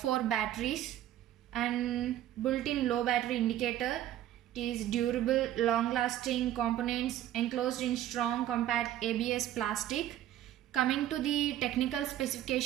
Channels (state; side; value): quieter; left; 12.5 dB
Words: batteries and built-in low battery indicator. It is durable, long-lasting components enclosed in strong compact ABS plastic. Coming to the technical